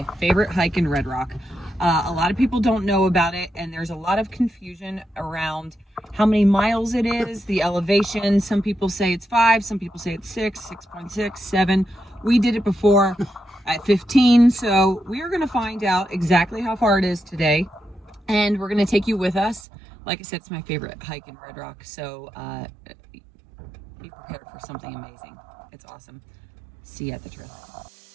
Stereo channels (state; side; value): drops out; left; at 19.7 s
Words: favorite hike in Red Rock. A lot of people don't know about it, and there's a lot of confusion around how many miles it is, the elevation. Some people say it's 5, some people say it's 6, 6.6, 7. We did it before at 15, so we are going to find out exactly how far it is today. And we're going to take you with us. Like I said, it's my favorite hike in Red Rock, so be prepared for something amazing. It's awesome. See you at the trail.